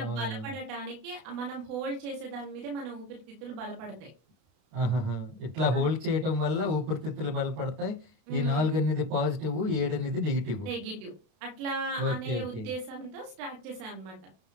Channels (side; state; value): left; late; 32 ms